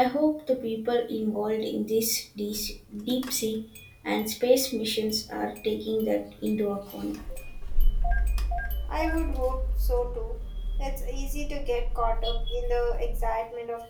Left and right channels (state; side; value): identical; both; correlation 1.00